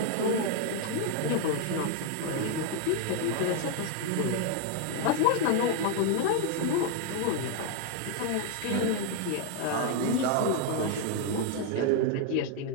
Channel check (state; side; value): different; both; correlation 0.00